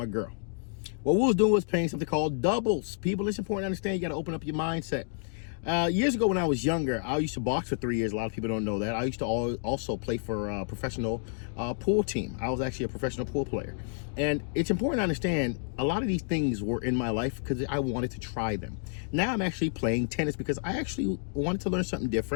girl. What we was doing was playing something called doubles. People, it's important to understand you got to open up your mindset. Years ago when I was younger, I used to box for 3 years. A lot of people don't know that. I used to also play for a professional pool team. I was actually a professional pool player. And it's important to understand a lot of these things were in my life because I wanted to try them. Now I'm actually playing tennis because I actually wanted to learn something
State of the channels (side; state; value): right; silent; digital silence